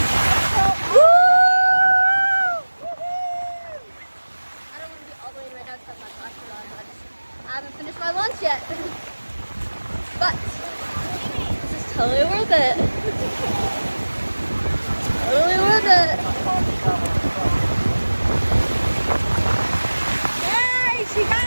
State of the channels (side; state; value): both; inverted; correlation -1.00